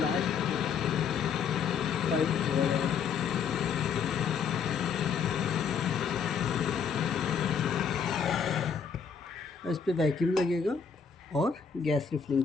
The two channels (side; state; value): right; quieter; 6.5 dB